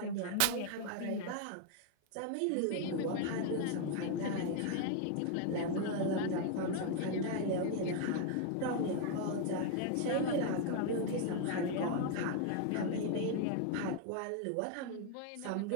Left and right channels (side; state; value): both; different; correlation 0.00